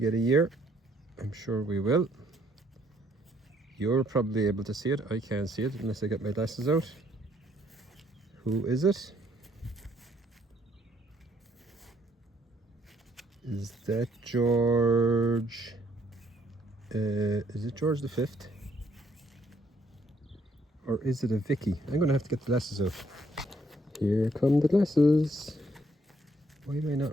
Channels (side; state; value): both; normal; correlation 0.68